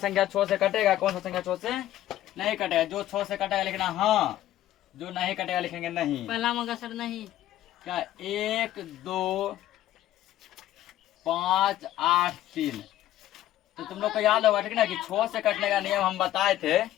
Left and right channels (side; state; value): right; quieter; 13.5 dB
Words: 6 से कटेगा, कौन सा संख्या 6 से नहीं कटेगा। जो 6 से कटेगा लिखना हाँ, जो नहीं कटेगा लिखेंगे नहीं। पहला मगा सर नहीं, क्या 1 2 5 8 3, तो तुम लोग को याद होगा, ठीक ना, कि 6 से कटने का नियम हम बताए थे।